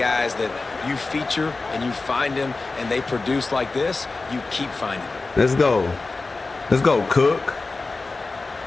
that you feature and you find them and they produce like this. You keep finding them. Let's go. Let's go, Cook.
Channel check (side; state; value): right; quieter; 3.6 dB